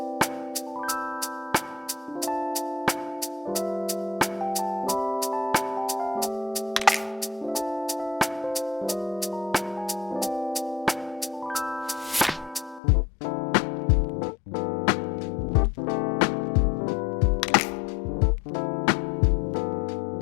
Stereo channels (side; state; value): right; drops out; at 12.8 s